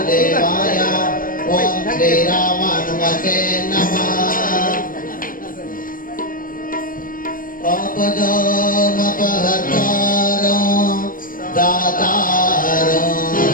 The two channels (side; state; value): right; late; 0.40 ms